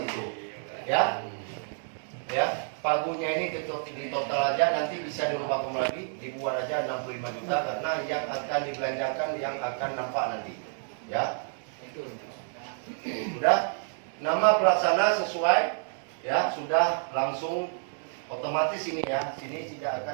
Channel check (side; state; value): left; silent; 58 dB below the other